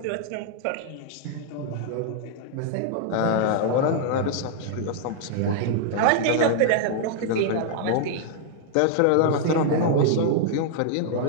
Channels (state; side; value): different; both; correlation -0.01